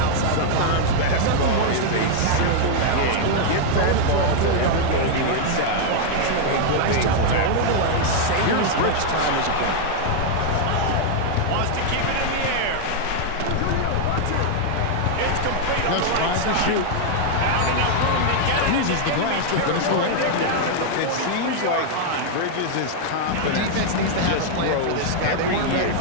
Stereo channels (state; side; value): different; both; correlation 0.00